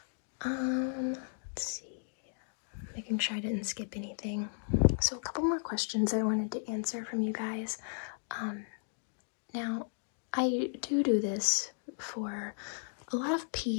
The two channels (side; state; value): right; silent; digital silence